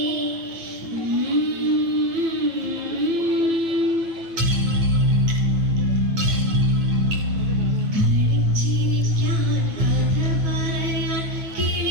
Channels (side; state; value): left; late; 9.3 ms